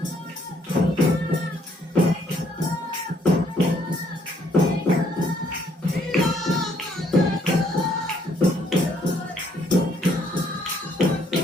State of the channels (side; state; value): both; normal; correlation 0.66